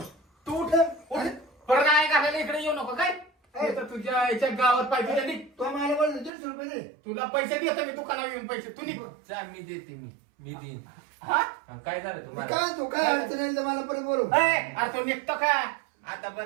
तू उठ. उठ. परत नाही घालायला इकडे येऊ नको काय? ए. तर तुझ्या याच्या गावात पाहिजे त्यांनी. तो मला बोलतो 150 रुपये दे. तुला पैसे देतो मी दुकानावर येऊन पैसे तू निघ. जा मी देते मी देईन. हा? हा, काय झालं तुम्हाला? काय तू काय अडचण येईल तर मला परत बोलव. ए, अरे तो निघतो का? आता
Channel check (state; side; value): drops out; left; at 6.3 s